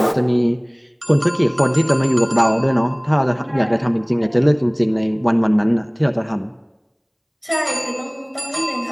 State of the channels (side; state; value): both; identical; correlation 1.00